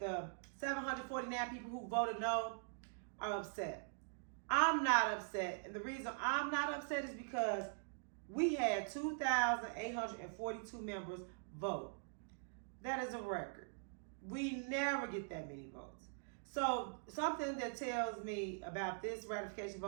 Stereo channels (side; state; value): left; silent; digital silence